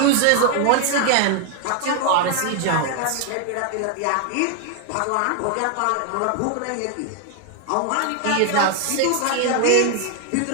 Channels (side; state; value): both; different; correlation 0.00